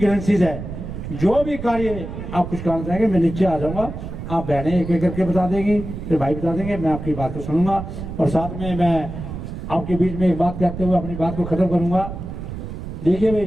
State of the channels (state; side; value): noise; right; rumble, 8 dB below the sound